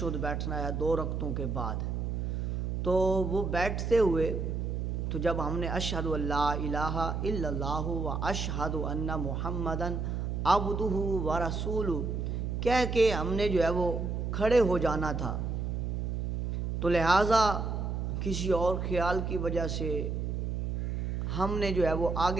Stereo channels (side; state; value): right; noise; hum, 2 dB below the sound